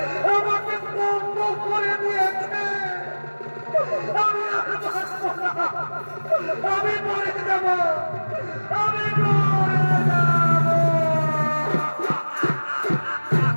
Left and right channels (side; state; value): both; inverted; correlation -1.00